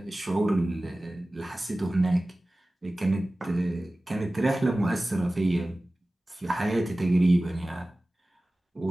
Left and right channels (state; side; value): normal; both; correlation 0.97